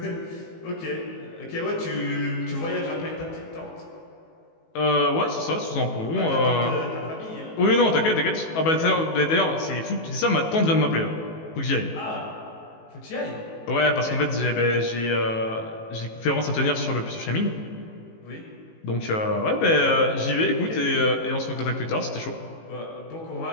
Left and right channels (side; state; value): right; late; 18 ms